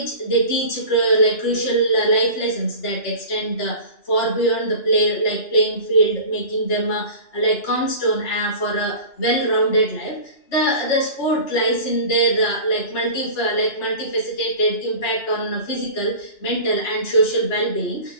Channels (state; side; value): late; right; 2.9 ms